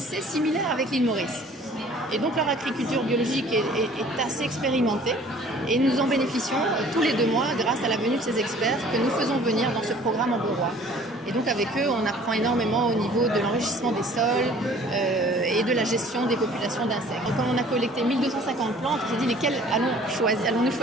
similaire avec l'île Maurice. Et donc leur agriculture biologique est assez expérimentée et nous en bénéficions tous les 2 mois grâce à la venue de ces experts que nous faisons venir dans ce programme Amberois. Et donc avec eux, on apprend énormément au niveau de l'enrichissement des sols et de la gestion des populations d'insectes. Donc, comme on a collecté 1250 plantes, on s'est dit lesquelles allons-nous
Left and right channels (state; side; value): normal; both; correlation 0.52